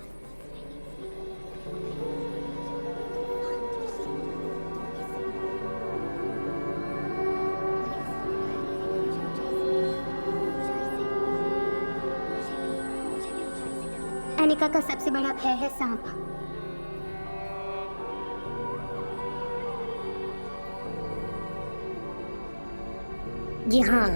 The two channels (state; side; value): inverted; both; correlation -1.00